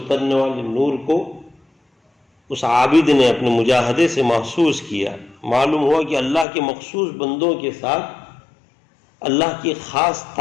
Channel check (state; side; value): drops out; right; at 6.5 s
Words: والے نور کو اس عابد نے اپنے مجاہدے سے محسوس کیا۔ معلوم ہوا کہ اللہ کے مخصوص بندوں کے ساتھ اللہ کے خاص